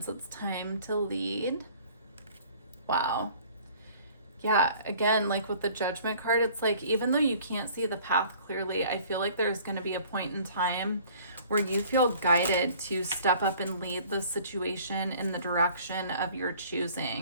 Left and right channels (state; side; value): inverted; both; correlation -0.52